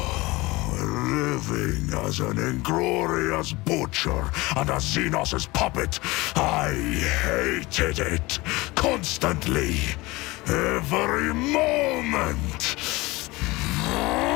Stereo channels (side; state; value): right; quieter; 21.8 dB